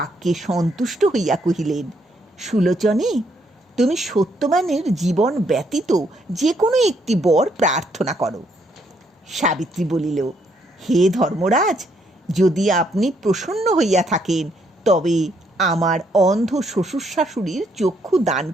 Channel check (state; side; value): normal; both; correlation 0.72